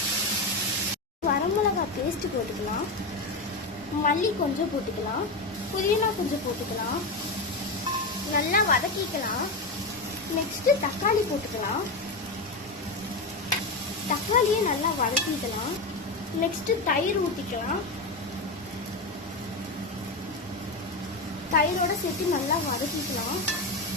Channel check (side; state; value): right; quieter; 3.1 dB